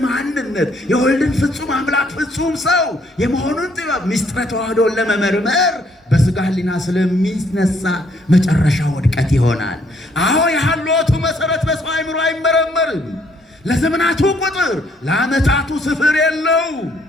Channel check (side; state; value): both; normal; correlation 0.67